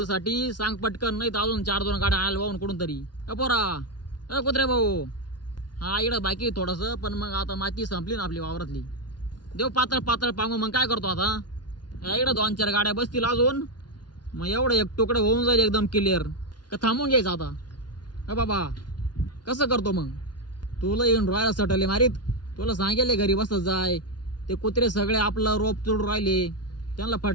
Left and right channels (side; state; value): right; late; 0.70 ms